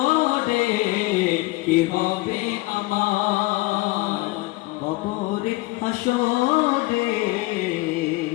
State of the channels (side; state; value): right; quieter; 21.2 dB